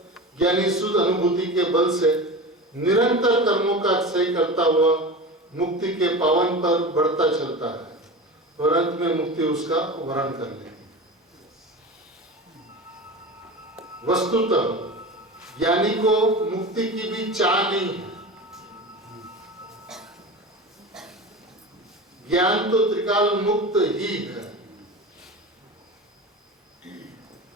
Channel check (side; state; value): both; normal; correlation 0.30